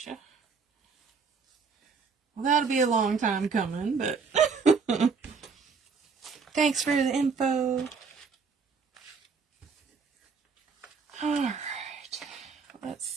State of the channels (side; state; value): left; quieter; 5.2 dB